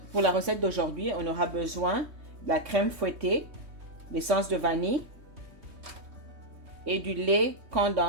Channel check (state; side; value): late; left; 3.2 ms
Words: la recette d'aujourd'hui, on aura besoin de la crème fouettée, l'essence de vanille et du lait